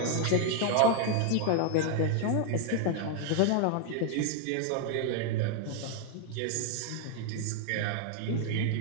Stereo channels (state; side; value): different; both; correlation 0.00